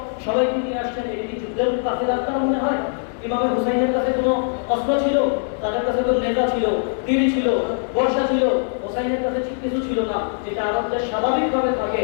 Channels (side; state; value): right; silent; digital silence